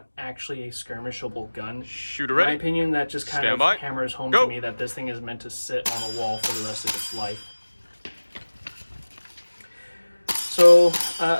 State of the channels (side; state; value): both; inverted; correlation -1.00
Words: actually a skirmishable gun. In my opinion, that just kind of hammers home to me that this thing is meant to sit on a wall for the rest of its life. So